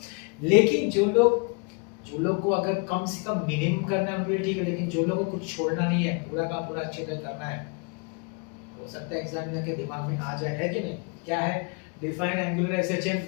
लेकिन जो लोग को अगर कम से कम मिनिमम करना है उनके लिए ठीक है, लेकिन जो लोगों को कुछ छोड़ना नहीं है, पूरा का पूरा अच्छे से करना है, हो सकता है एग्जामिनर के दिमाग में आ जाए, है कि नहीं? क्या है? Define angular SHM.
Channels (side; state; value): right; quieter; 32.8 dB